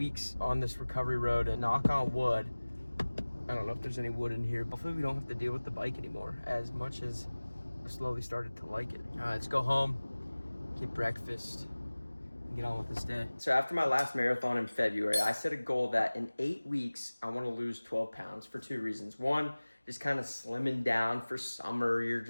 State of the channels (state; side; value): inverted; both; correlation -1.00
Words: on this recovery road, and knock on wood, I don't know if there's any wood in here. Hopefully we don't have to deal with the bike anymore, as much as I slowly started to like it. All right, let's go home, get breakfast, and get on with this day. So after my last marathon in February, I set a goal that in 8 weeks, I want to lose 12 pounds for 2 reasons. One, just kind of slimming down for summer. You're